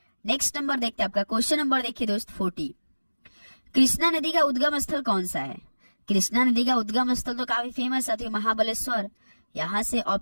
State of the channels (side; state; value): both; inverted; correlation -1.00